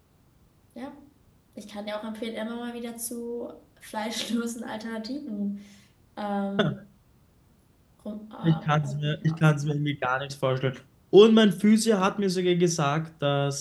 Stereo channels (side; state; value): both; identical; correlation 1.00